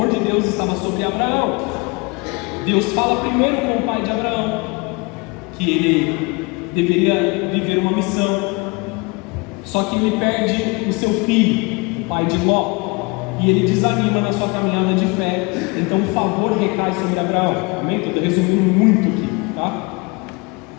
de Deus estava sobre Abraão. Deus fala primeiro com o pai de Abraão que ele deveria viver uma missão. Só que ele perde o seu filho, o pai de Ló, e ele desanima na sua caminhada de fé. Então o favor recai sobre Abraão. Amém? Estou resumindo muito aqui, tá?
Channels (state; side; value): quieter; right; 28.1 dB